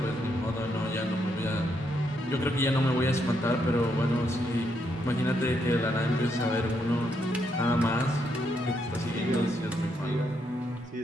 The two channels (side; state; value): both; normal; correlation 0.77